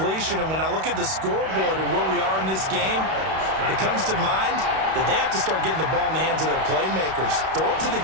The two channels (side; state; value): left; late; 31 ms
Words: And when I look at the scoreboard and where we are in this game, it comes to mind that they have to start getting the ball in the hands of their playmakers. Throw it to the